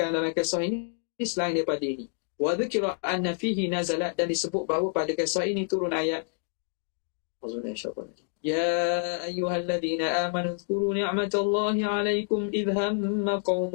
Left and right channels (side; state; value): right; silent; digital silence